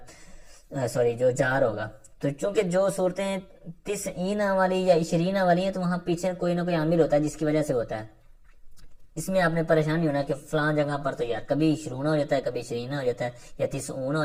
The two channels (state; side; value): identical; both; correlation 1.00